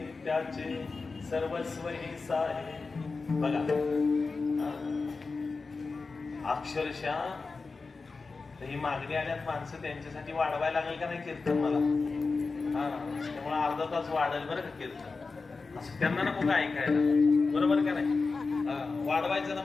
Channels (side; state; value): right; quieter; 4.2 dB